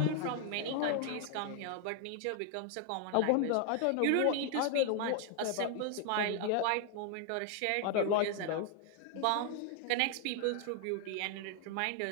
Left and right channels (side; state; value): both; different; correlation 0.00